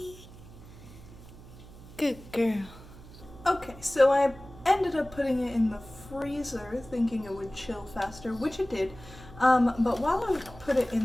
Good girl. Okay, so I ended up putting it in the freezer thinking it would chill faster, which it did. But while I put it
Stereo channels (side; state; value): right; noise; hum, 18 dB below the sound